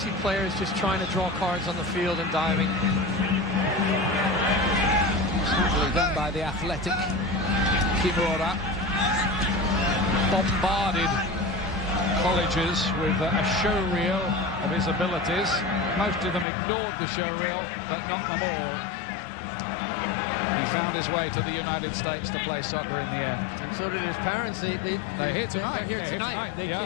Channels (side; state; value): right; drops out; at 16.4 s